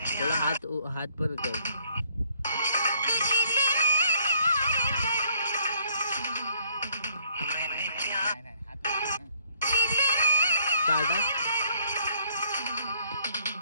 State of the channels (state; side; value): inverted; both; correlation -0.64